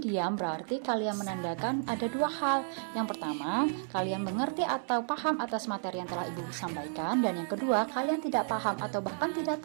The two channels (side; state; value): left; silent; 56 dB below the other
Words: diam berarti kalian menandakan ada 2 hal. Yang pertama, kalian mengerti atau paham atas materi yang telah ibu sampaikan. Dan yang kedua, kalian tidak paham atau bahkan tidak